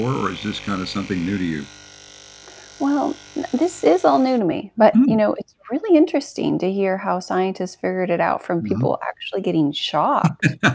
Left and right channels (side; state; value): both; identical; correlation 1.00